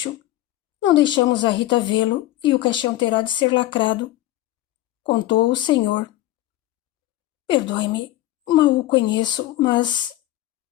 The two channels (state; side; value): quieter; right; 15.5 dB